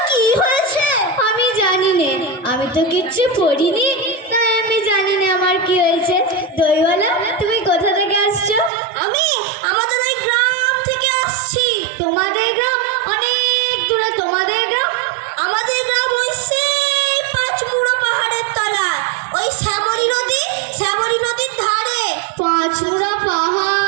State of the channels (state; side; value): drops out; left; at 8.7 s